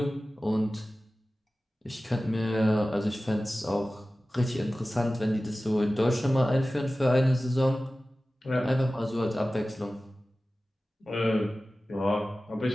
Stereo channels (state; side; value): normal; both; correlation 0.96